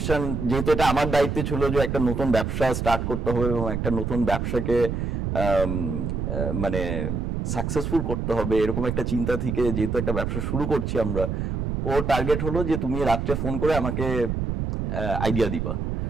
যেহেতু এটা আমার দায়িত্বে ছিল যে একটা নতুন ব্যবসা স্টার্ট করতে হবে এবং একটা নতুন ব্যবসাকে মানে সাকসেসফুল করতে হবে, এরকম একটা চিন্তা থেকে যেহেতু একটা ব্যবসা শুরু করছি আমরা, ও টার্গেট হলো যে তুমি রাত্রে ফোন করে আমাকে আইডিয়া দিবা।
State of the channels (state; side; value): noise; right; rumble, 2 dB below the sound